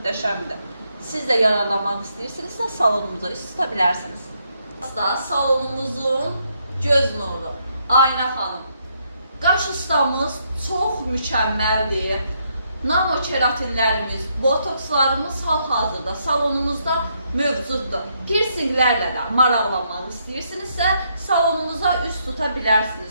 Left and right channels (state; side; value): inverted; both; correlation -0.75